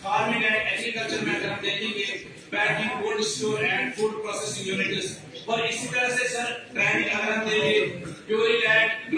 फार्मिंग एंड एग्रीकल्चर में अगर हम देखेंगे packing, cold store and food processing units, और इसी तरह से सर ट्रेनिंग अगर हम देंगे प्योरी लैंड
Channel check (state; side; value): identical; both; correlation 1.00